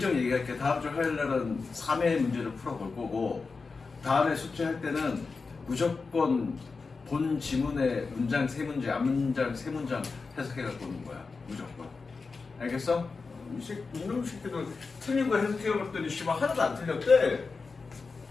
얘기할게. 다음 주 화요일날은 3회 문제를 풀어볼 거고 다음에 숙제할 때는 무조건 본 지문의 문장 3문제, 앞문장 3문장 해석해갖고 오는 거야. 무조건. 알겠어? 이놈 새끼들 틀린 거 해석해봤더니 씨발 하나도 안 틀렸대.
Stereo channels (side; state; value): right; quieter; 4.4 dB